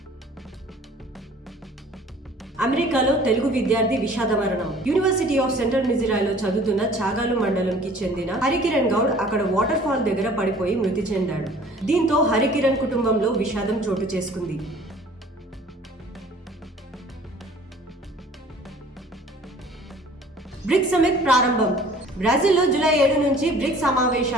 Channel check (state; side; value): normal; both; correlation 0.50